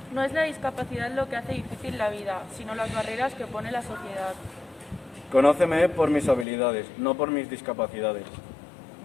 No es la discapacidad lo que hace difícil la vida, sino las barreras que pone la sociedad. Conóceme por mis habilidades, no por mis discapacidades.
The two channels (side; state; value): right; drops out; at 6.5 s